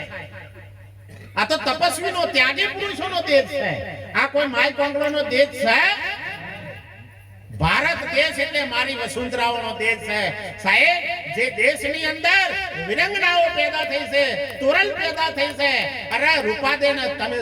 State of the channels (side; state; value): both; identical; correlation 1.00